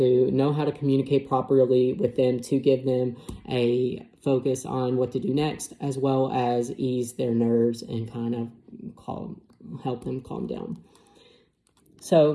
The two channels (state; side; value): identical; both; correlation 1.00